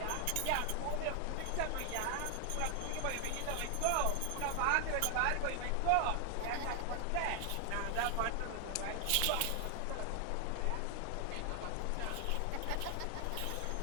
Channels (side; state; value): both; different; correlation 0.00